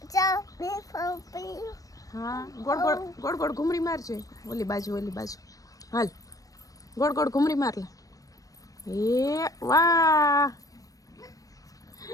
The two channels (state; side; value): late; right; 0.17 ms